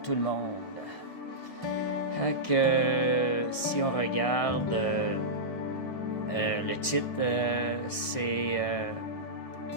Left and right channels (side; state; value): right; late; 1.6 ms